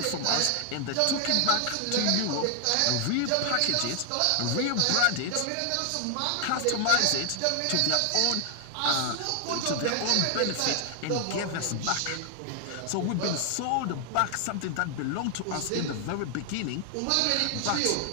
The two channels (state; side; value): different; both; correlation 0.00